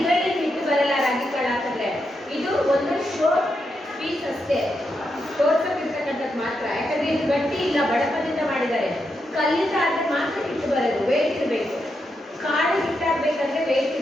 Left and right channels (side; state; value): both; normal; correlation 0.84